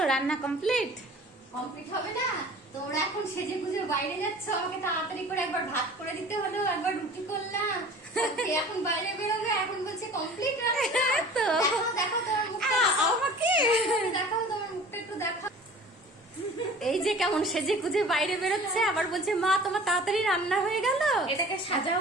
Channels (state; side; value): normal; both; correlation 0.44